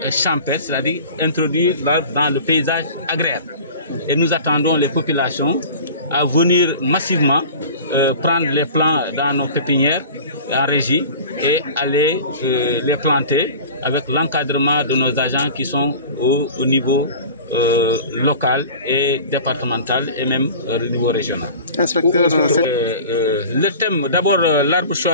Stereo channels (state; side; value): inverted; both; correlation -0.39